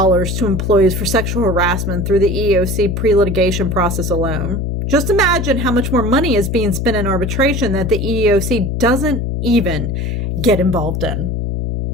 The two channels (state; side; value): noise; left; hum, 2 dB below the sound